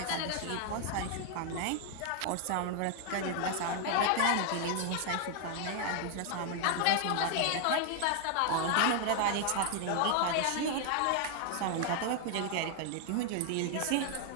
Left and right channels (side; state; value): both; different; correlation 0.00